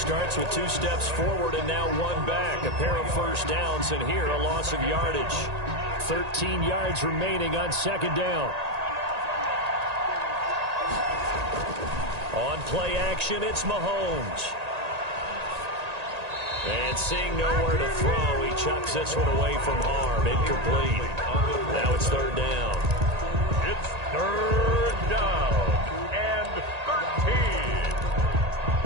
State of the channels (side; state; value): left; late; 1.8 ms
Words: with 2 steps forward and now 1 back. A pair of first downs, and here a loss of yardage. 13 yards remaining on second down. On play action, it's Mahomes. And seeing nowhere to throw, he chucks this one away from harm. Incomplete. Now it's third down. It's third down and 13.